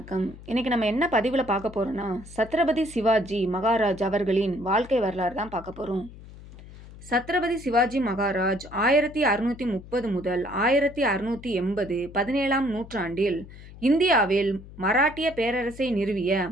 இன்றைக்கி நம்ம என்ன பதிவில் பார்க்க போகிறோன்னா, சத்ரபதி சிவாஜி மகாராஜ் அவர்களின் வாழ்க்கை வரலாறு தான் பார்க்க போகிறோம். சத்ரபதி சிவாஜி மகாராஜ் 1630 முதல் 1680 17ஆம் நூற்றாண்டில் இந்தியாவில் மராட்டிய பேரரசை நிறுவிய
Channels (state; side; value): noise; left; hum, 17 dB below the sound